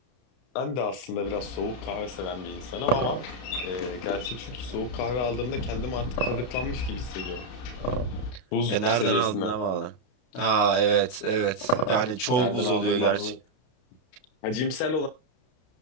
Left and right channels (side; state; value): right; late; 32 ms